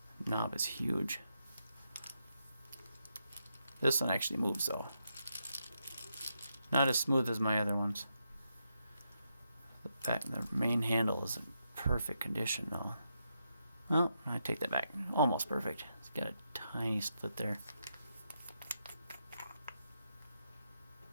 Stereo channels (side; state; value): both; inverted; correlation -0.83